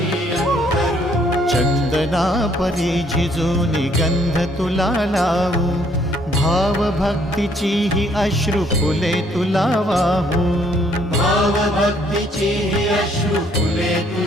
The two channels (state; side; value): normal; both; correlation 0.65